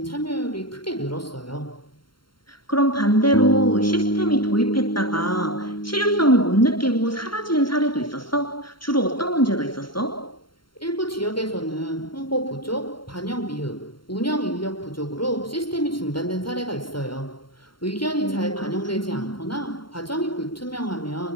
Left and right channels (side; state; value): right; late; 0.73 ms